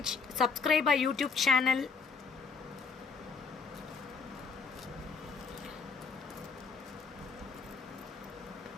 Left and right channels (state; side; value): quieter; right; 5.1 dB